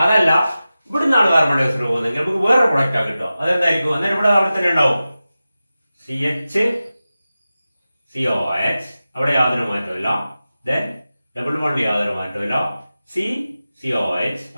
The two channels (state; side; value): inverted; both; correlation -0.95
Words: അതല്ല ഇവിടെ നിന്നാണ് കാർബൺ ഡൈ ഓക്സൈഡ് പോകുന്നത്, നമുക്ക് വേറെ പ്രൊഡക്റ്റാ കിട്ടുക. അതെന്തായിരിക്കും? അന്നേരം ഇവിടെ അവിടെ തന്നെ ഉണ്ടാവും CH അവിടെ യാതൊരു മാറ്റമില്ല. ദെൻ ഡബിൾ ബോണ്ട് യാതൊരു മാറ്റമില്ല. COH